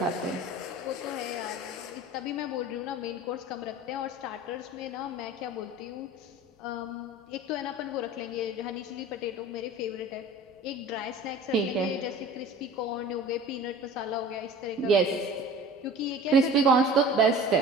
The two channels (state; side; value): normal; both; correlation 0.41